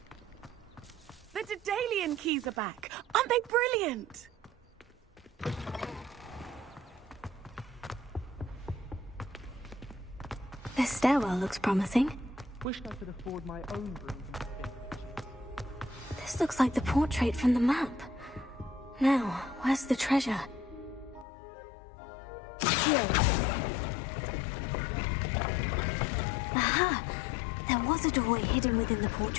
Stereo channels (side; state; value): right; drops out; at 21.2 s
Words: The Daedalian keys are back. Aren't they brilliant? This stairwell looks promising. Wish I could afford my own broom. This looks like the portrait from the map. Now, where's the treasure? Here. Aha! There was a doorway hidden within the